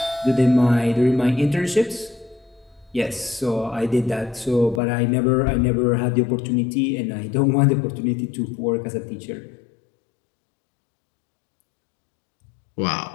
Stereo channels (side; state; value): right; drops out; at 4.8 s